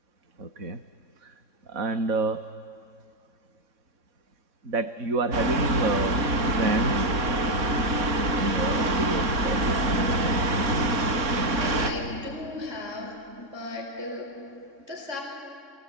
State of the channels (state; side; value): late; left; 3.6 ms